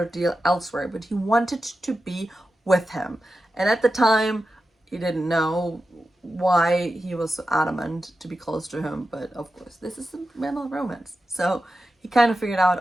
deal elsewhere, but he wanted to be with him. And at the time, he didn't know why he was so adamant to be close to him, but of course, this is a mental romance. So he kind of figured out,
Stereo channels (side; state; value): both; normal; correlation 0.91